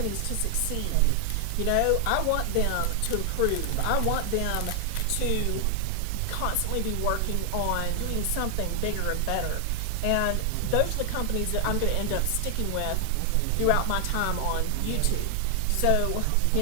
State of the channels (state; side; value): different; both; correlation 0.00